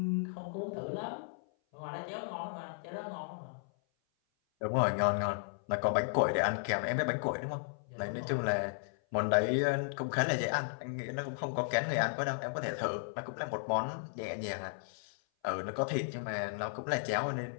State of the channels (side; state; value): right; silent; 55 dB below the other